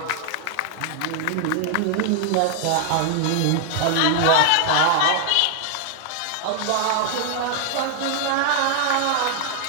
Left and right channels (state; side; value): different; both; correlation 0.00